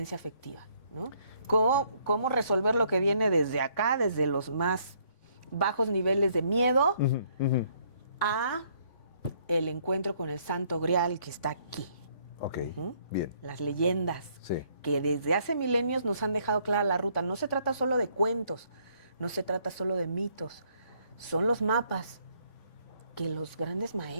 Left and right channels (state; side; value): late; right; 3.5 ms